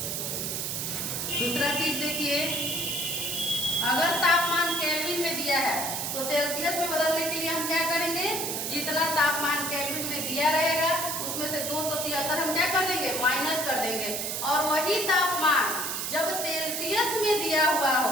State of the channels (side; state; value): right; noise; hiss, 2 dB below the sound